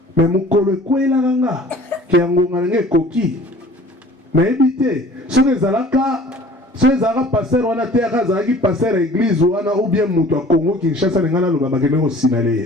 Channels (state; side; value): normal; both; correlation 0.49